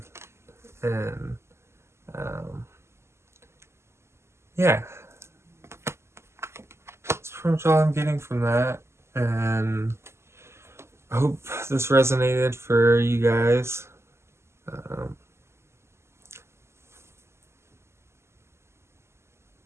and yeah, that's pretty much all I'm getting from that, and I hope this resonated for you guys. I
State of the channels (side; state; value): left; late; 0.13 ms